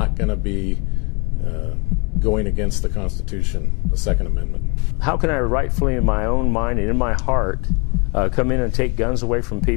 going to be going against the Constitution, the Second Amendment. How can I rightfully, in my own mind and in my heart, come in and take guns away from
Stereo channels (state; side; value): quieter; right; 32.1 dB